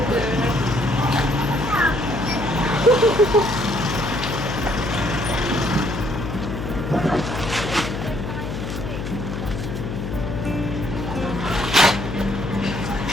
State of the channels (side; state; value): left; noise; hum, 5 dB below the sound